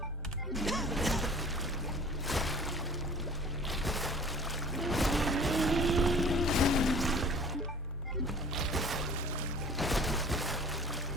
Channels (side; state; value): both; normal; correlation 0.47